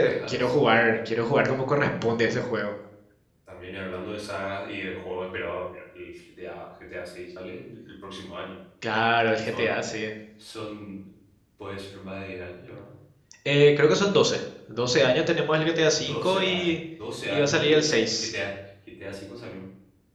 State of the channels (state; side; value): identical; both; correlation 1.00